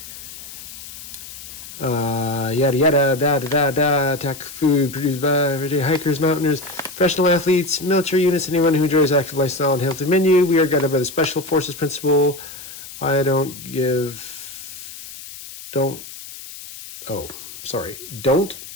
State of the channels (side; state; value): left; noise; hiss, 14 dB below the sound